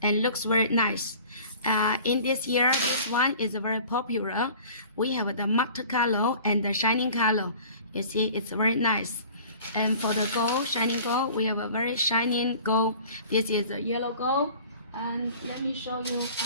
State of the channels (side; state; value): both; inverted; correlation -0.46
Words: and looks very nice. In this year, this one is very popular. We have the matte color and the shining color. You see, it's very nice. And for the gold, shining gold, we have a very shining gold. This is a yellow gold. And let me show you